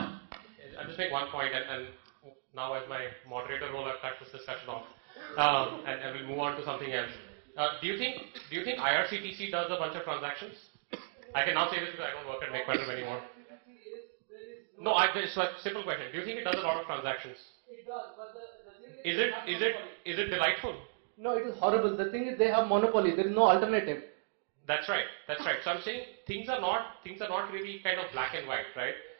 just make one point, and now as my moderator role, I've cut this discussion off, and we'll move on to something else. Do you think IRCTC does a bunch of transactions? I can now say this because I don't work at MakeMyTrip anymore. No, it's a simple question. Do you think it does a lot of transactions? It does, but the thing Is it delightful? No, it is horrible. The thing is, they have monopoly. There is no alternative. That's right. So I'm saying things are not really kind of black and white, right?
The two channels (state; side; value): silent; left; digital silence